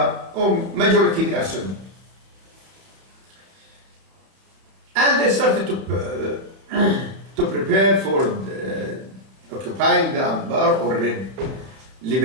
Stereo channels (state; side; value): late; left; 31 ms